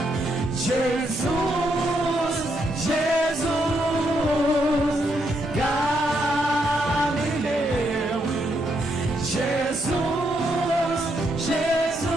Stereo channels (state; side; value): normal; both; correlation 0.77